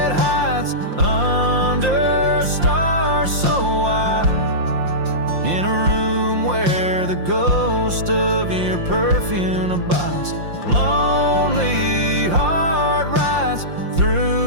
hides under stars so wide, in a room where the ghost of your perfume abides. Lonely heart rides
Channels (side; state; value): left; late; 5.7 ms